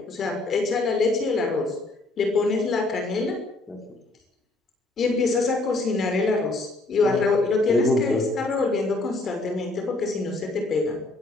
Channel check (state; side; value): quieter; right; 3.0 dB